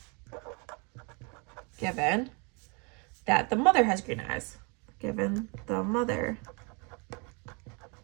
that the mother has green eyes. Given the mother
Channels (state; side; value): quieter; left; 32.9 dB